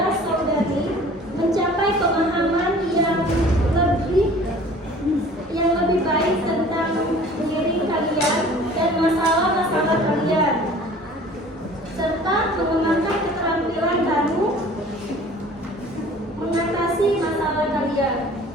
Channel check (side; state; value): both; normal; correlation 0.48